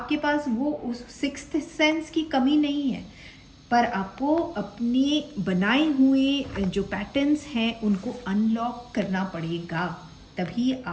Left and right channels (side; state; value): both; identical; correlation 1.00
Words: पास वो उस सिक्स्थ सेंस की कमी नहीं है, पर आपको अपने बनाए हुए जो पैटर्न्स हैं उनको अनलॉक करना पड़ेगा, तभी